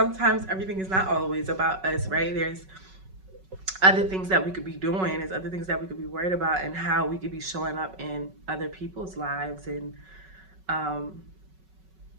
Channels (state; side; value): late; left; 5.3 ms